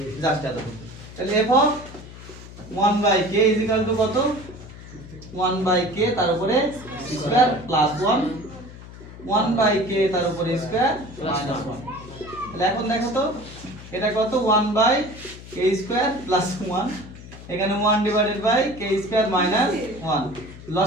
জাস্ট এত। তাহলে f of 1/k is equal to কত 1/k তার উপরে স্কয়ার প্লাস 1 1/k তার উপরে স্কয়ার মাইনাস 1। তাহলে এখন দেখো তো এটা কত 1/k স্কয়ার প্লাস 1, এখানে 1 divided by k square minus 1।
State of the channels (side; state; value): left; noise; hum, 16 dB below the sound